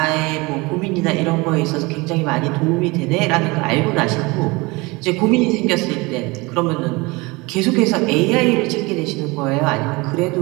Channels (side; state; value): left; quieter; 24.4 dB